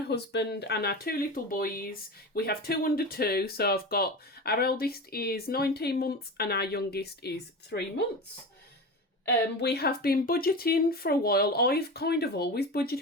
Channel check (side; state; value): both; normal; correlation 0.27